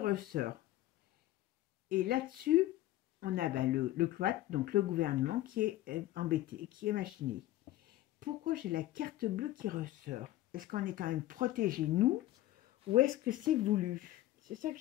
Et là-dessus, on a le cloître, donc le gouvernement qui est embêté, qui est machiné. Pourquoi j'ai la carte bleue qui ressort? Est-ce qu'on est quand même protégé, nous, ou est-ce que c'est voulu? C'est ça que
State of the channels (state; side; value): quieter; right; 15.2 dB